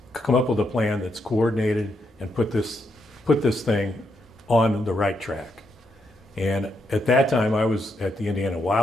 come up with a plan that's coordinated and put this thing on the right track. And at that time, I was at the Indiana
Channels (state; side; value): normal; both; correlation 0.80